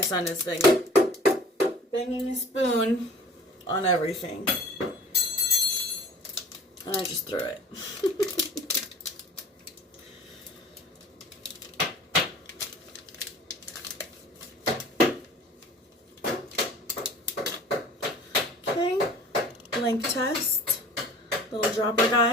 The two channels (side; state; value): both; normal; correlation 0.45